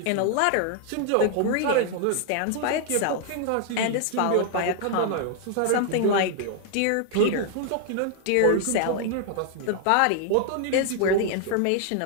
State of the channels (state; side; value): different; both; correlation 0.00